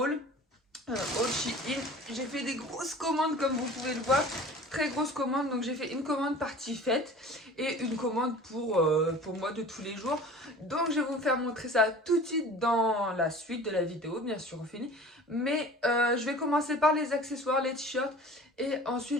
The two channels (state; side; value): normal; both; correlation 0.42